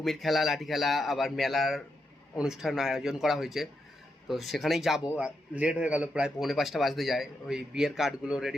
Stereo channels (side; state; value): both; normal; correlation 0.84